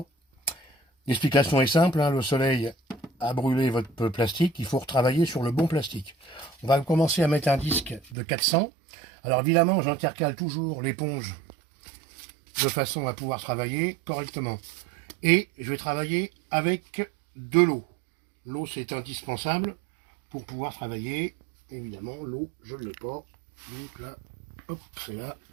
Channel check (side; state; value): left; drops out; at 8.2 s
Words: L'explication est simple, hein, le soleil a brûlé votre plastique, il faut retravailler sur le bon plastique. On va commencer à mettre un disque de 400. Alors évidemment j'intercale toujours l'éponge de façon à pouvoir travailler correctement. Et je vais travailler avec de l'eau. L'eau c'est indispensable pour pouvoir travailler. Évidemment l'eau je ne l'ai pas. Donc là, hop, c'est là.